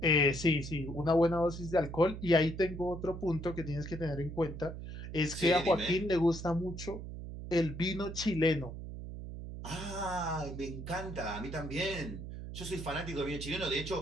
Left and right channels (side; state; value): right; noise; hum, 9 dB below the sound